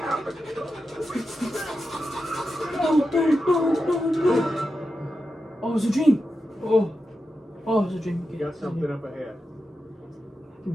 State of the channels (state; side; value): normal; both; correlation 0.90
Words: Oh, it was a dream. Oh, it was a dream. You got something up ahead. Give